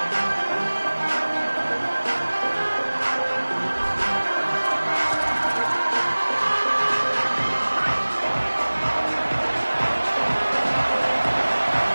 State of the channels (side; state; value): both; inverted; correlation -1.00